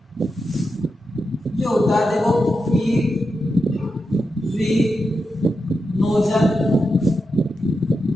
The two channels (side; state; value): both; normal; correlation 0.88